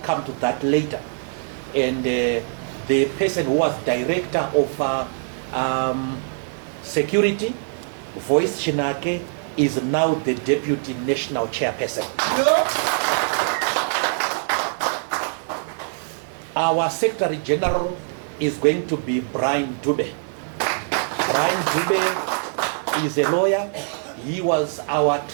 to that later. And the person who was director of security, Voice Chinake, is now the deputy national chairperson. Our Secretary General is going to be Brian Dube. Brian Dube is a lawyer. He was our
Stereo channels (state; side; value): silent; left; digital silence